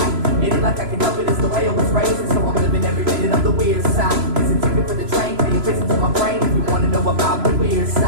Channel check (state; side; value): late; left; 3.0 ms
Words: It ain't like I can help it, it's the way I was raised, and so I'm living every minute of the weird side. It's a ticket for the train, pay a visit to my brain if you want to know about the weird